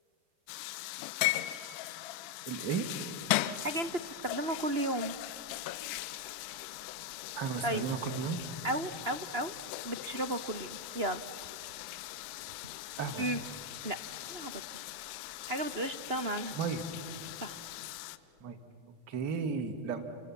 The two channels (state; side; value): late; left; 2.9 ms